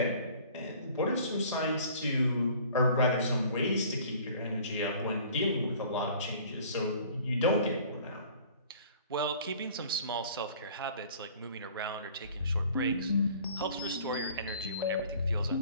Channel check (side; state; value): both; inverted; correlation -0.50